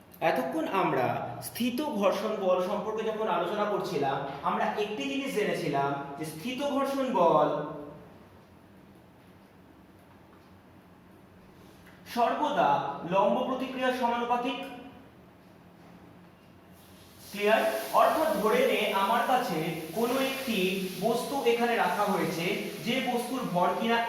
এতক্ষণ আমরা স্থিত ঘর্ষণ বল সম্পর্কে যখন আলোচনা করছিলাম, আমরা একটি জিনিস জেনেছিলাম যে স্থিত ঘর্ষণ বল সর্বদা লম্ব প্রতিক্রিয়ার সমানুপাতিক। ক্লিয়ার? অর্থাৎ ধরে নে আমার কাছে কোনো একটি বস্তু এখানে রাখা হয়েছে, যে বস্তুর ভর কিনা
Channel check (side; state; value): both; identical; correlation 1.00